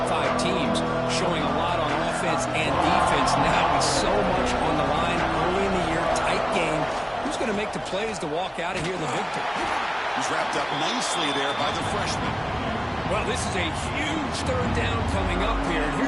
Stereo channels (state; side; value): identical; both; correlation 1.00